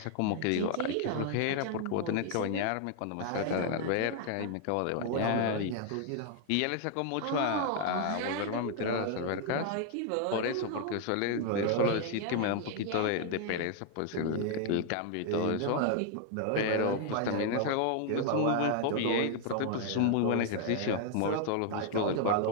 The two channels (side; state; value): both; different; correlation 0.00